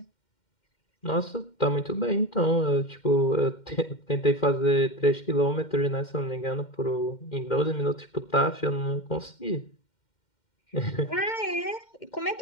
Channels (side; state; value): right; late; 2.1 ms